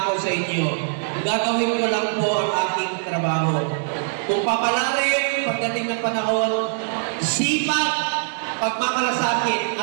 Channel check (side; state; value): left; silent; digital silence